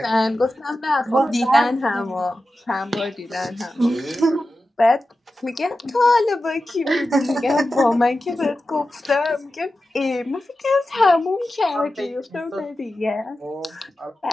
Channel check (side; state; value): both; normal; correlation 0.93